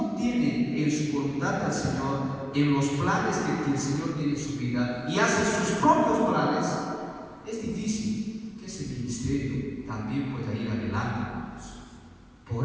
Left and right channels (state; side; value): identical; both; correlation 1.00